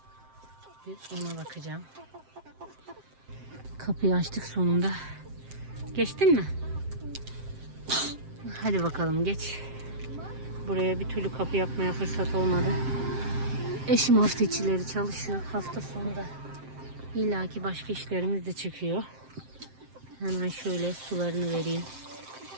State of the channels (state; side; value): late; left; 7.6 ms